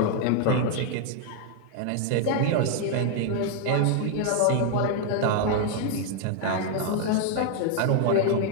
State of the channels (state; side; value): different; both; correlation 0.00